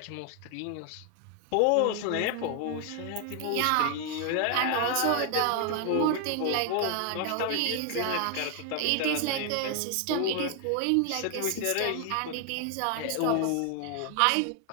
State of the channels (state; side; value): different; both; correlation 0.00